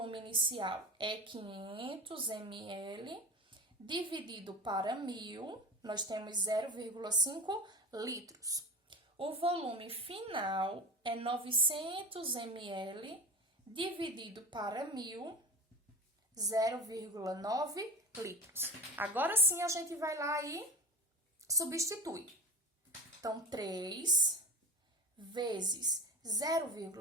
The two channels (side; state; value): both; normal; correlation 0.31